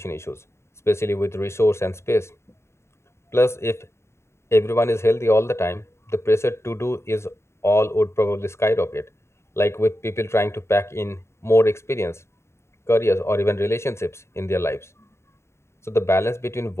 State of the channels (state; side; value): late; right; 0.13 ms